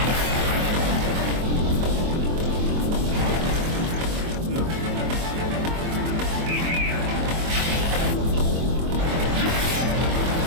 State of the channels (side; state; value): left; late; 24 ms